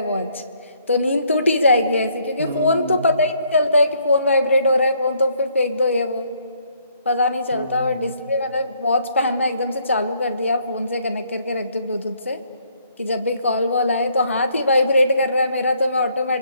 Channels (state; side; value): inverted; both; correlation -0.68